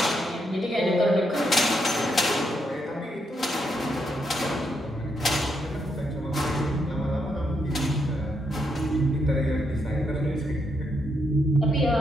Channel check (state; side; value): normal; both; correlation 0.79